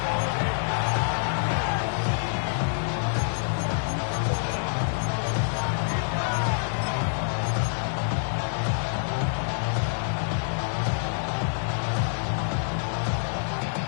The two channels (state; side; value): silent; right; digital silence